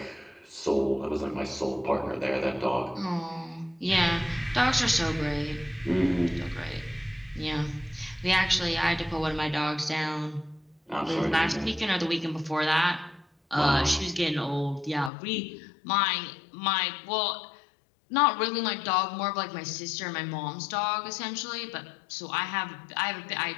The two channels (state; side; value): drops out; right; at 15.1 s